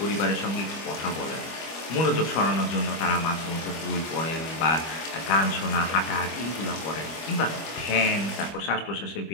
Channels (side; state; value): right; late; 25 ms